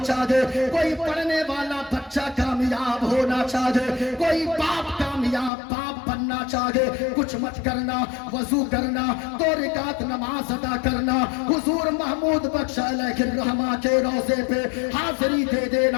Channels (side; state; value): right; drops out; at 5.5 s